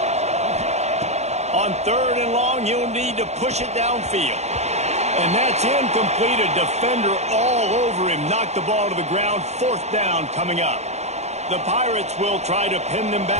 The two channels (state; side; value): late; left; 0.32 ms